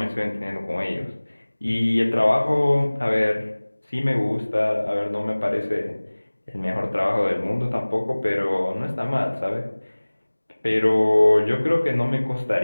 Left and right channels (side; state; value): both; inverted; correlation -1.00